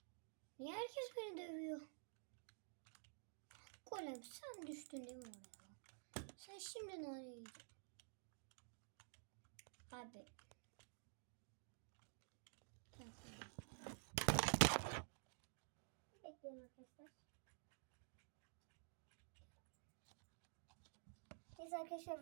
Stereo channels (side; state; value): left; silent; digital silence